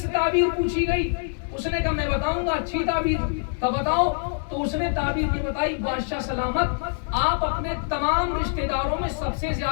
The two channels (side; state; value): right; silent; digital silence